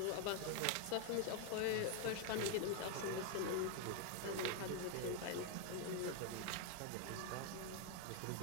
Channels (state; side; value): different; both; correlation 0.00